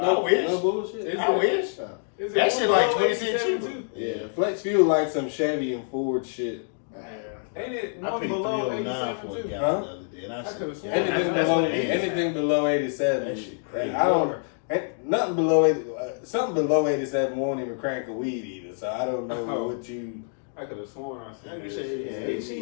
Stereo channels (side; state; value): right; silent; digital silence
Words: I wish. No bullshit. Is I it- wish. Is That it shit like 20 cents 187 cheaper. too? Yeah, flex fuel like some Chevy and Ford shit. Ain't it I one paid below 309 87 for a too? gallon Huh? the other day, and I said, could've sworn. Anything that's below what it is. anything below 87. That shit crazy. I don't. Nothing below 80. Something below 87 won't even crank a weed either. So I don't know Oh. what you. I could have sworn I I seen can that say, shit. yeah, I ain't